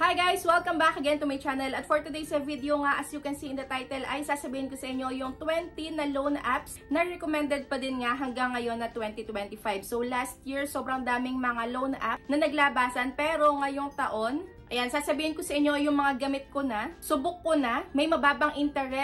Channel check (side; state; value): both; identical; correlation 1.00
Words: Hi guys! Welcome back again to my channel. At for today's video nga, as you can see in the title, ay sasabihin ko sa inyo yung 20 na loan apps na recommended pa din nga hanggang ngayon na 2025. So last year, sobrang daming mga loan app na naglabasan, pero ngayong taon, ayan, sasabihin ko sa inyo yung mga gamit ko na, subok ko na, may mababang